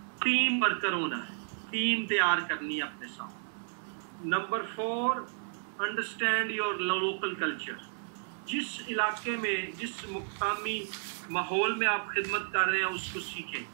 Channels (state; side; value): silent; left; digital silence